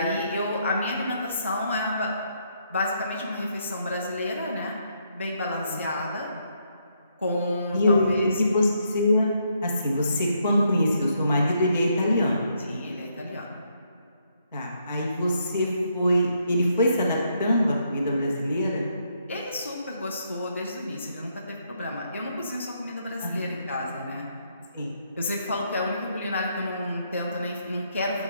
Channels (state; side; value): inverted; both; correlation -0.75